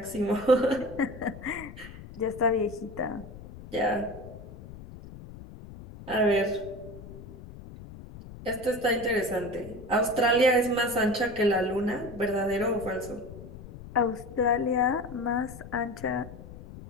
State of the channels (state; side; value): noise; left; rumble, 15 dB below the sound